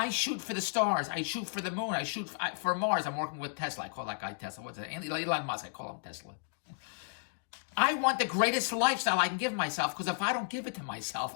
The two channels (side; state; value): right; silent; digital silence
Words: shoot for the stars. I shoot for the moon. I shoot for Mars. I'm working with Tesla. I call that guy Tesla. What's it? Elon Musk. I call him Tesla. I want the greatest lifestyle I can give myself, because if I don't give it to myself,